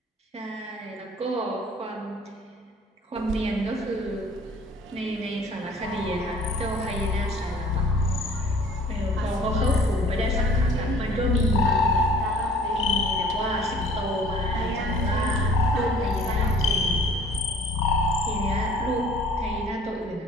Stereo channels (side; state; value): both; normal; correlation 0.51